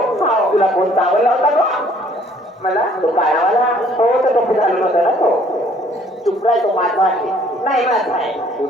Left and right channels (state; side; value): normal; both; correlation 0.59